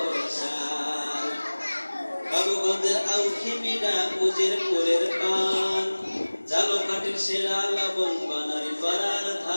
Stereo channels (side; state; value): both; inverted; correlation -1.00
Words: বাবুগঞ্জের আউখিমিডা উজিরপুরের পান ঝালকাঠির সেরা লবণ বানারি পাড়ার